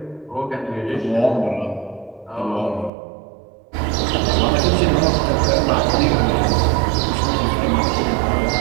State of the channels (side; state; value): left; drops out; at 2.9 s